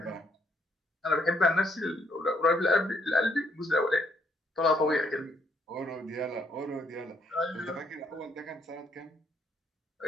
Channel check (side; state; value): both; normal; correlation 0.71